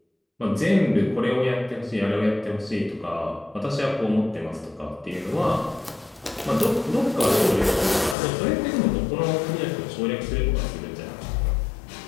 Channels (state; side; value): drops out; right; at 8.2 s